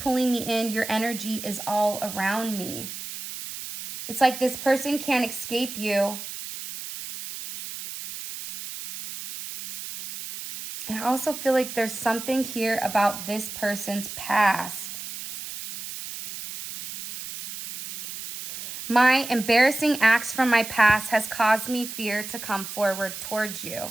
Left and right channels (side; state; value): right; noise; hiss, 9 dB below the sound